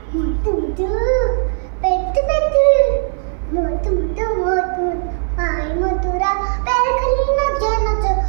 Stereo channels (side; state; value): left; silent; 58 dB below the other